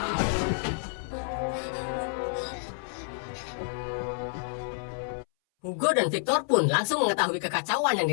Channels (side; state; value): right; silent; 59 dB below the other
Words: Hugo dan Victor pun langsung mengetahui kekacauan yang